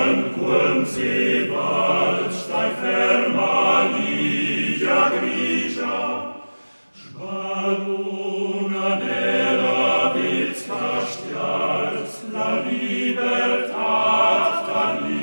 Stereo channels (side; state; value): both; inverted; correlation -1.00